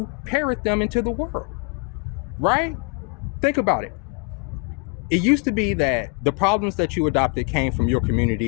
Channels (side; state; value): right; quieter; 33.9 dB